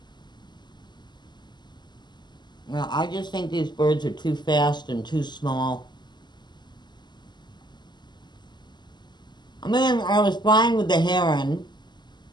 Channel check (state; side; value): late; right; 0.21 ms